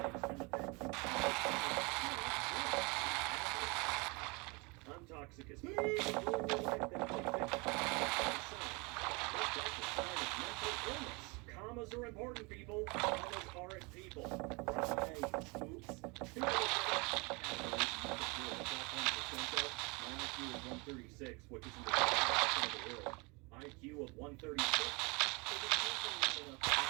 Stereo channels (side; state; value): left; quieter; 28.8 dB